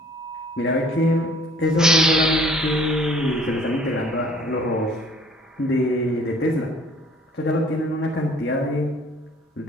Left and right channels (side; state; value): both; normal; correlation 0.55